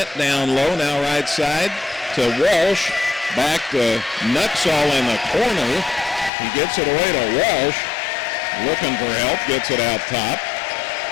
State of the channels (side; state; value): right; drops out; at 6.3 s